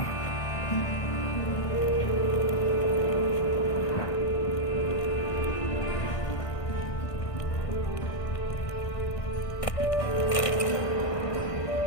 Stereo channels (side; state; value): right; late; 1.6 ms